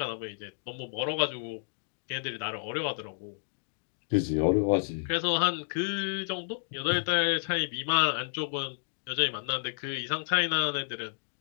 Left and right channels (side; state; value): right; silent; digital silence